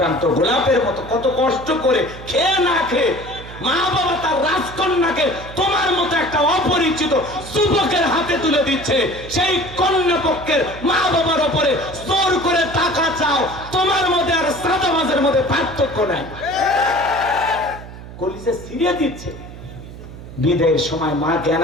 গোলাপের মতো কত কষ্ট করে খেয়ে না খেয়ে মা বাবা তার রাজকন্যাকে তোমার মতো একটা অপরিচিত যুবকের হাতে তুলে দিচ্ছে। সেই কন্যা পক্ষের মা বাবার উপরে জোর করে টাকা চাও, তোমার মধ্যে আর সাদাবাজের মধ্যে পার্থক্য নাই। কলিজা ছিঁড়ে দিচ্ছে। বিদায়ের সময় মা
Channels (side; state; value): right; noise; hum, 14 dB below the sound